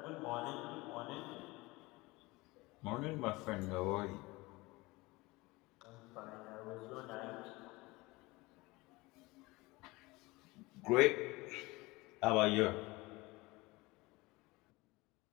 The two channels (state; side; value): quieter; right; 22.4 dB